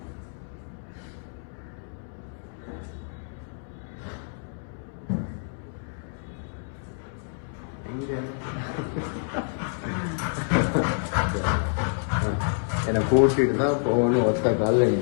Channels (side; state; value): right; silent; 60 dB below the other